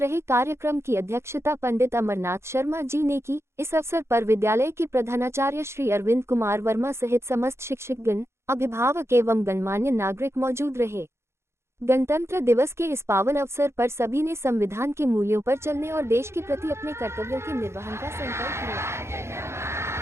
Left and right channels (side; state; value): left; late; 0.13 ms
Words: रहे। कार्यक्रम की अध्यक्षता पंडित अमरनाथ शर्मा जी ने की। इस अवसर पर विद्यालय के प्रधानाचार्य श्री अरविंद कुमार वर्मा सहित समस्त शिक्षकगण, अभिभावक एवं गणमान्य नागरिक मौजूद रहे। गणतंत्र दिवस के इस पावन अवसर पर सभी ने संविधान के मूल्यों पर चलने और देश के प्रति अपने कर्तव्यों के निर्वहन का संकल्प लिया।